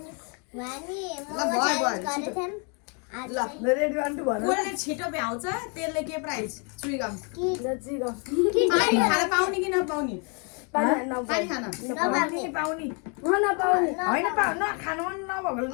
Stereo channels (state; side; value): quieter; right; 36.4 dB